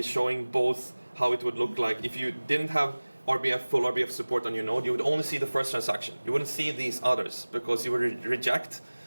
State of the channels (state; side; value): inverted; both; correlation -1.00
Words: showing both how it would look like if you didn't have full RBF support on your node. You would only see the first transaction. You wouldn't see these others because you would reject